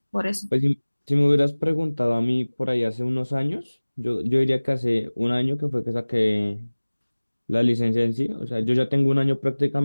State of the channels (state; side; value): inverted; both; correlation -1.00